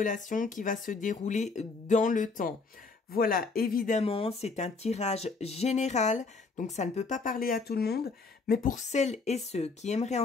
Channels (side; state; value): right; quieter; 4.2 dB